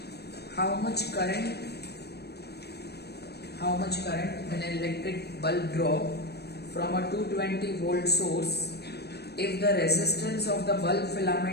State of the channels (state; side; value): late; right; 0.47 ms